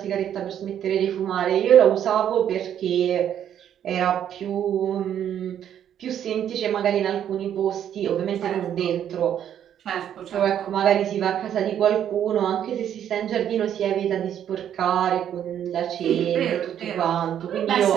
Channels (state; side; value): quieter; left; 9.9 dB